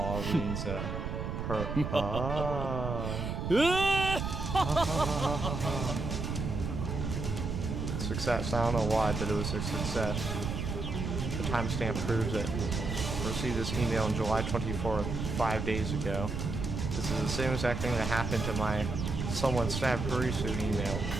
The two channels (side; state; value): right; noise; rumble, 3 dB below the sound